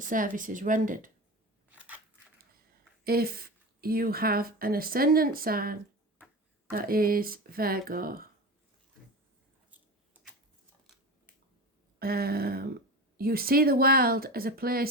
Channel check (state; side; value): normal; both; correlation 0.28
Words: rendered. If you have an ascendant sign that is Virgo, you see the world as a